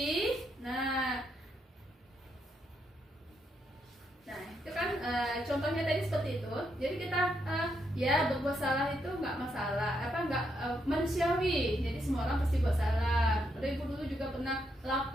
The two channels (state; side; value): normal; both; correlation 0.79